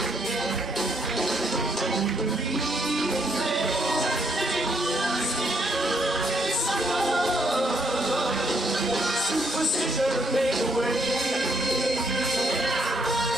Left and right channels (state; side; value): normal; both; correlation 0.71